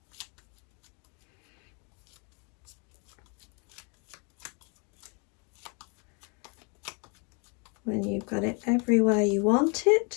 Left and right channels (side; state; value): right; quieter; 35.3 dB